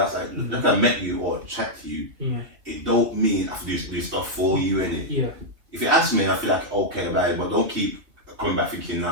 Like, if I met you or chat to you, it don't mean I have to do stuff for you, innit? Yeah. If you ask me, I feel like, okay, about but don't keep coming back thinking,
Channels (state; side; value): late; left; 2.7 ms